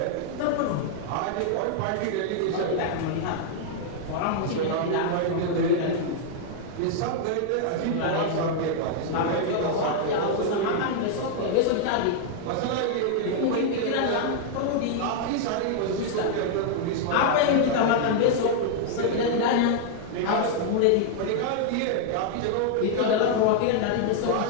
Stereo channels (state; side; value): different; both; correlation -0.01